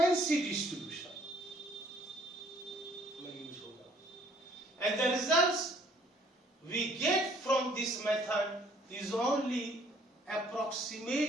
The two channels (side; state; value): both; normal; correlation 0.60